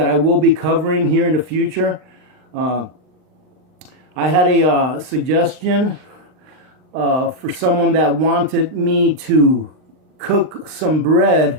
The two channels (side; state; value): left; late; 39 ms